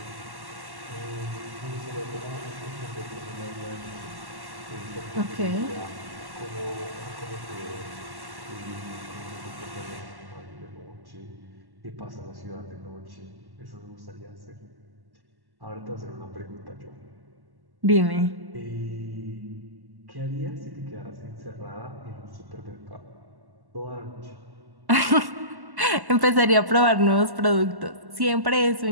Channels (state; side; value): late; left; 1.1 ms